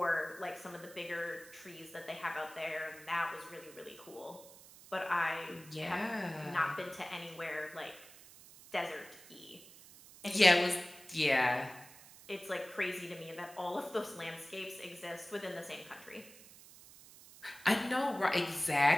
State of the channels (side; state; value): right; noise; hiss, 19 dB below the sound